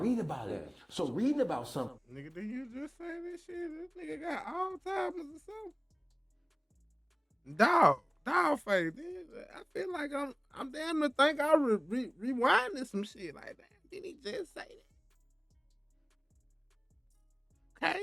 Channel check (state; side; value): identical; both; correlation 1.00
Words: Yeah. read about it. So reading about something. nigga, did you just say this shit? This nigga got Alzheimer's or something? Dawgface. I feel like I'm damn to think I rewinding some shit like that. Did he just say that? Okay,